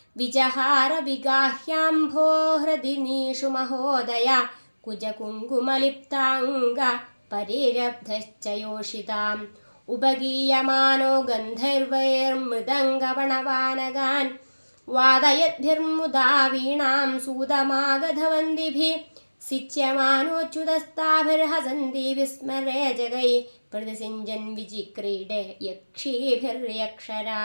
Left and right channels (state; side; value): inverted; both; correlation -1.00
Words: വിജഹാരവിഗാഹ്യാംഭോ ഹൃദിനീഷു മഹോദയ കുജകുങ്കുമലിപ്താംഗ പരിരബ്ധശ്ച യോഷിതാം ഉപഗീയമാനോ ഗന്ധർവൈർമൃദംഗപണവാനകാൻ വാദയദ്ഭിർമുദാ വീണാം സൂതമാഗധവന്ദിഭിः സിച്യമാനോച്യുതസ്താഭിർഹസന്തി വിസ്മരേ ജഗൈ പ്രതിസിഞ്ജൻ വിചിക്രീഡേ